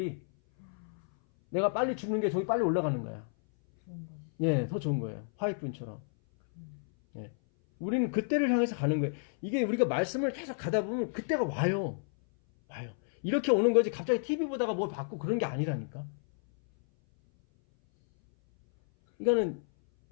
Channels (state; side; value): silent; right; 57 dB below the other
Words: 내가 빨리 죽는 게 저기 빨리 올라가는 거야. 좋은 건. 예, 더 좋은 거예요. 화이트분처럼. 예. 우리는 그때를 향해서 가는 거예요. 이게 우리가 말씀을 계속 가다 보면 그때가 와요. 와요. 이렇게 오는 거지 갑자기 TV 보다가 뭘 받고 그런 게 아니라니까. 그러니까는